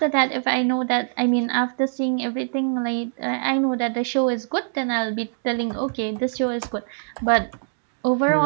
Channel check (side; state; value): left; silent; digital silence